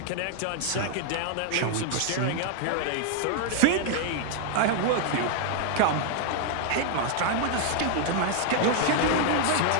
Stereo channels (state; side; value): different; both; correlation 0.00